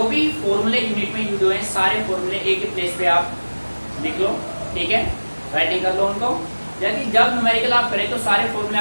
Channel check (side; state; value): both; inverted; correlation -1.00